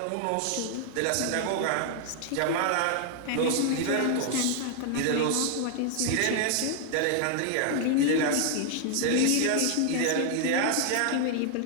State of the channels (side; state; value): both; different; correlation 0.00